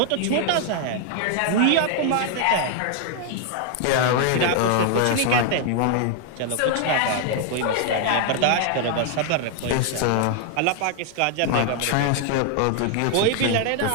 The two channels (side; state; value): both; different; correlation 0.00